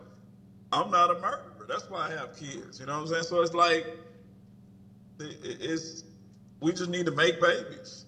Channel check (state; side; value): identical; both; correlation 1.00